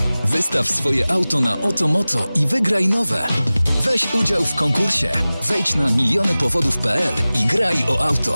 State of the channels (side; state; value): both; inverted; correlation -0.98